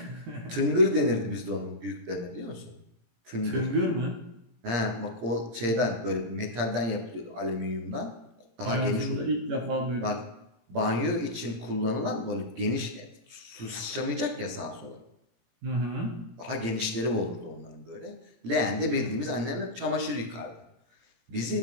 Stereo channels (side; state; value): left; late; 17 ms